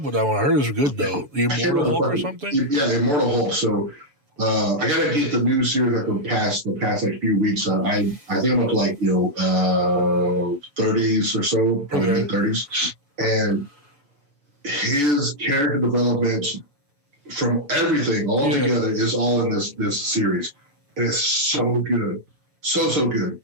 with that one. I heard it was good though. The Immortal Hulk or something. Yeah, the Immortal Hulk. So I gotta get the new series like the past like few weeks. I think I'm up to like 30s or so, probably mid 30s, and his character development from everything all together is all in this series, and it's so good, so good.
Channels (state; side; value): late; left; 7.0 ms